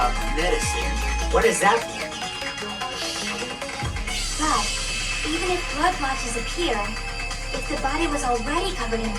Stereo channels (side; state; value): both; identical; correlation 1.00